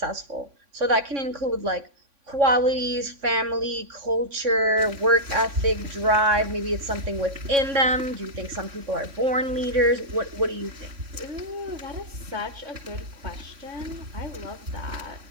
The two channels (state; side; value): late; left; 3.6 ms